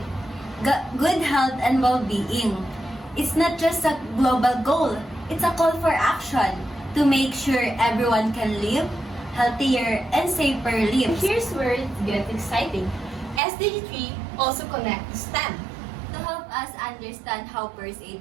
good health and well-being. It's not just a global goal, it's a call for action to make sure everyone can live healthier and safer And lives. here's where it gets exciting. SDG 3 also connects to STEM. To help us understand how first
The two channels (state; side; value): drops out; left; at 13.4 s